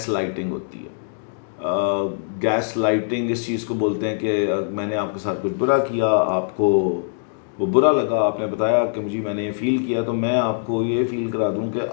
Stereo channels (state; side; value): silent; right; digital silence